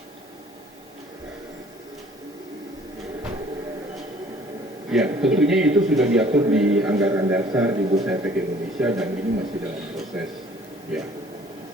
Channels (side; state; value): both; normal; correlation 0.55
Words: Ya, tentunya itu sudah diatur di anggaran dasar di Bursa Efek Indonesia dan ini masih dalam proses. Ya.